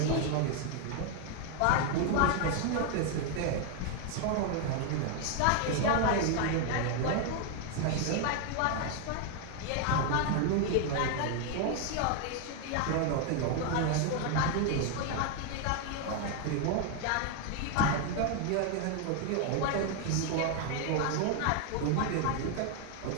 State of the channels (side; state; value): both; different; correlation 0.00